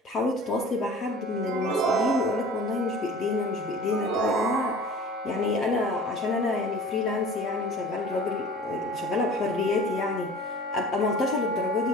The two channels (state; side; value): normal; both; correlation 0.43